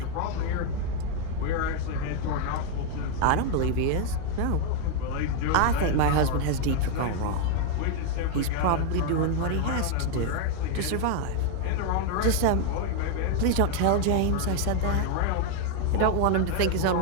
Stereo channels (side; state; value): both; different; correlation 0.00